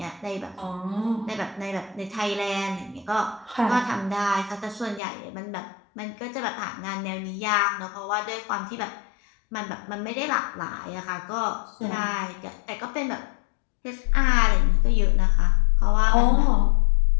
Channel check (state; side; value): drops out; right; at 5.0 s